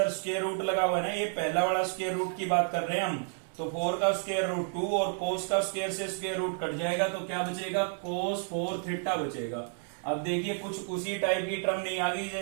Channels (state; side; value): silent; left; 57 dB below the other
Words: स्क्वायर रूट लगा हुआ है ना, ये पहला वाला स्क्वायर रूट की बात कर रहे हैं हम। तो 4 का स्क्वायर रूट 2 और कोस का स्क्वायर से स्क्वायर रूट कट जाएगा, तो क्या बचेगा, कोस 4 थीटा बचेगा। अब देखिए कुछ उसी टाइप की टर्म नहीं आ गई